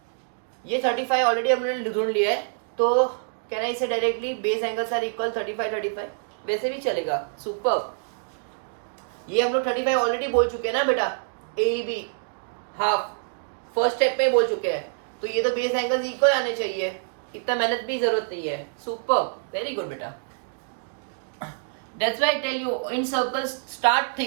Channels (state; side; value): silent; left; digital silence